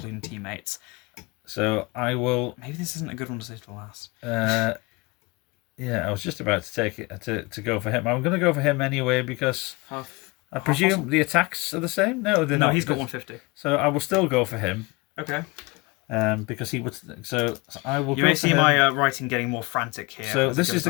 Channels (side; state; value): right; quieter; 25.2 dB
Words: teammates. So I will... Maybe this isn't a good one to save for last. Yeah, I was just about to take it to go for him. I'm going to go for him anyway because I presume the attacks are the same. No, they're No, not. he's got 150. So I will still go for him. Okay. Because he would. So I will. You go may for see him. my writing getting more frantic here. So as it this goes is the